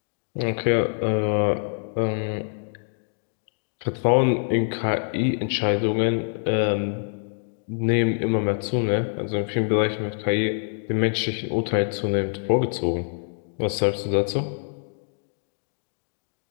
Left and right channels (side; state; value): right; silent; digital silence